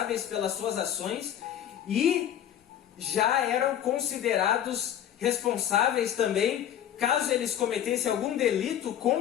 pelas suas ações e já eram considerados responsáveis também, caso eles cometessem algum delito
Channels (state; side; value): quieter; right; 10.4 dB